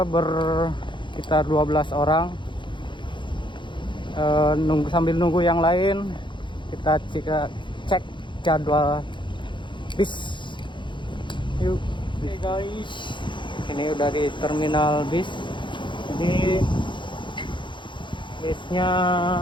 sekitar 12 orang. Sambil nunggu yang lain, kita cek jadwal bis. Yuk. Oke guys, ini udah di terminal bis. Jadi bisnya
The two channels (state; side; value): late; right; 0.23 ms